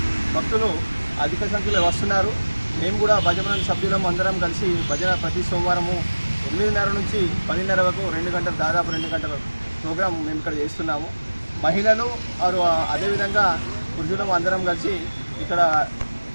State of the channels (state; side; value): inverted; both; correlation -1.00